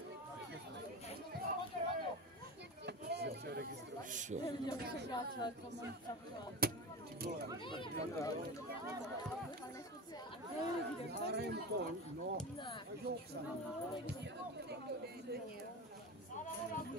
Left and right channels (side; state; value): both; normal; correlation 0.26